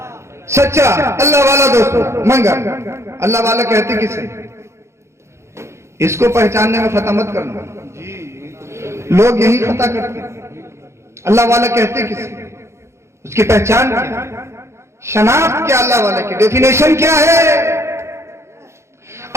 سچا اللہ والا دوست منگا. اللہ والا کہتے کسے؟ اس کو پہچاننے میں خطا مت کرنا. لوگ یہی خطا کرتے ہیں. اللہ والا کہتے کسے؟ اس کی پہچان کیا؟ شناخت کیا اللہ والا کی؟ ڈیفینیشن کیا ہے؟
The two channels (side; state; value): left; late; 0.13 ms